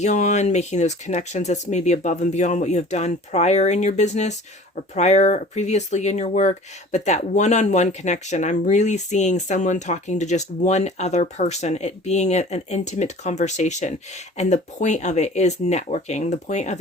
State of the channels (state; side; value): normal; both; correlation 0.45